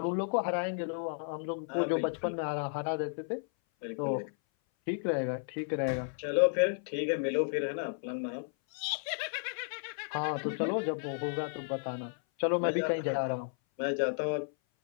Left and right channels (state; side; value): silent; right; 56 dB below the other